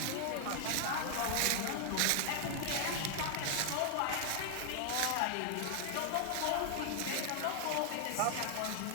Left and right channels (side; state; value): both; different; correlation 0.00